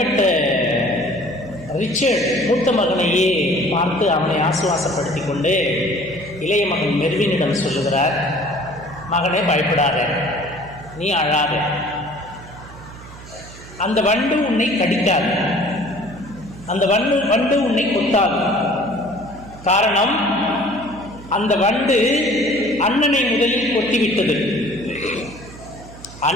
ரிச்சர்ட் மூத்த மகனையே பார்த்து அவனை ஆசுவாசப்படுத்தி கொண்டு இளைய மகன் மெர்வினிடம் சொல்லுகிறார், மகனே பயப்படாத, நீ அழாத, அந்த வண்டு உன்னை கடிக்காது, அந்த வண்டு உன்னை கொத்தாது. காரணம், அந்த வண்டு அண்ணனை முதலில் கொத்திவிட்டது.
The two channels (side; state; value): right; noise; hum, 17 dB below the sound